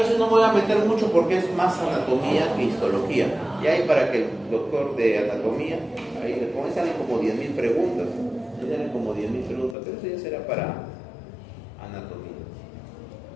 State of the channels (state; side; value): drops out; right; at 9.8 s